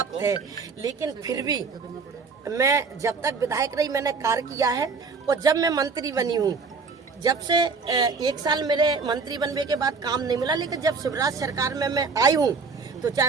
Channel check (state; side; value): quieter; left; 4.7 dB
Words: है, लेकिन फिर भी मैं जब तक विधायक रही मैंने कार्य किया है, और जब मैं मंत्री बनी हूँ, जब से 1 साल मेरे मंत्री बनने के बाद काम नहीं मिला, लेकिन जब शिवराज सरकार में मैं आई हूँ तो